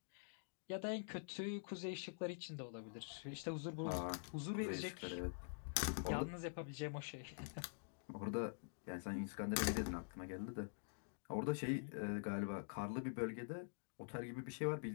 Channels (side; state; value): right; silent; digital silence